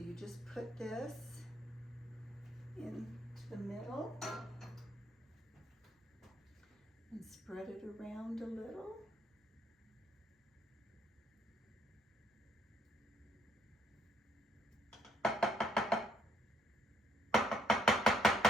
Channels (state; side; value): normal; both; correlation 0.69